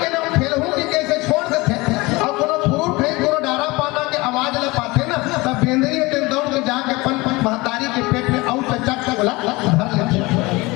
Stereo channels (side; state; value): right; quieter; 22.8 dB